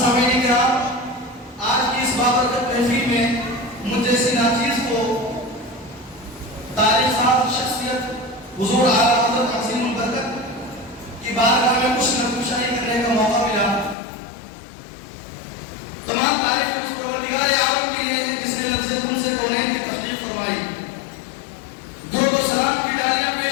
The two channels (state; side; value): drops out; right; at 14.0 s